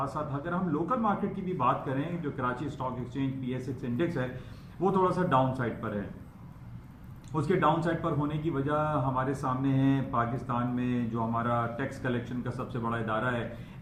साथ अगर हम लोकल मार्केट की भी बात करें, जो Karachi stock exchange PSX index है वो थोड़ा सा डाउन साइड पर है। उसके डाउन साइड पर होने की वजह हमारे सामने है पाकिस्तान में जो हमारा टैक्स कलेक्शन का सबसे बड़ा इदारा है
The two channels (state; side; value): identical; both; correlation 1.00